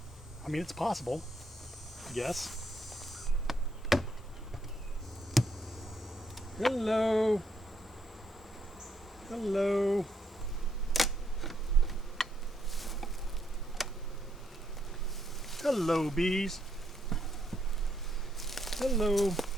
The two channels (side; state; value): both; normal; correlation 0.75